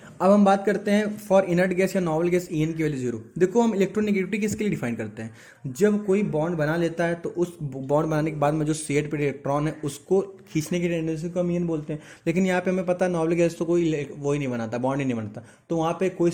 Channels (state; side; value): identical; both; correlation 1.00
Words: अब हम बात करते हैं फॉर इनर्ट गैस या नॉवल गैस ई एन की वैल्यू जीरो। देखो हम इलेक्ट्रोनेगेटिविटी किसके लिए डिफाइन करते हैं, जब कोई बॉन्ड बना लेता है तो उस बॉन्ड बनाने के बाद में जो शेड पे इलेक्ट्रॉन है उसको खींचने की टेंडेंसी को हम ई एन बोलते हैं। लेकिन यहाँ पे हमें पता है नॉवल गैस तो कोई वो ही नहीं बनाता, बॉन्ड ही नहीं बनता, तो वहाँ पे कोई